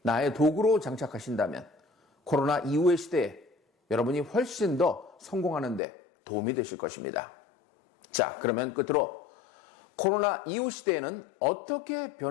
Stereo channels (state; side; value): drops out; right; at 5.8 s